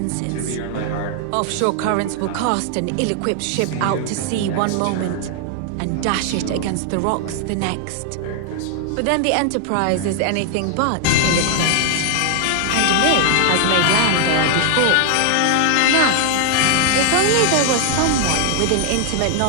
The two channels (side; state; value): both; different; correlation 0.00